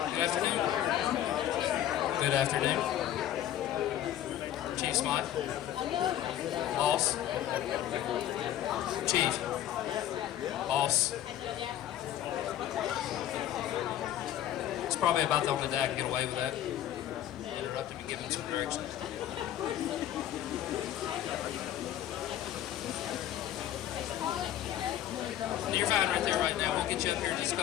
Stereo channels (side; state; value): right; quieter; 11.9 dB